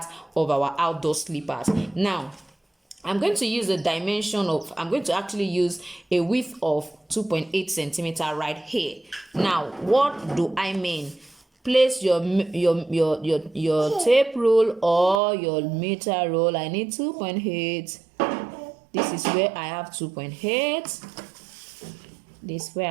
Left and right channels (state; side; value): drops out; left; at 15.2 s